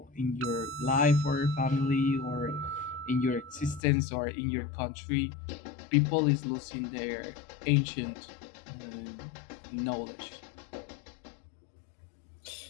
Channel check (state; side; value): drops out; right; at 3.8 s